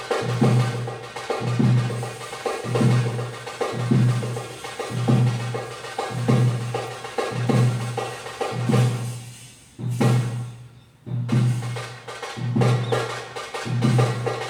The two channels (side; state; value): both; identical; correlation 1.00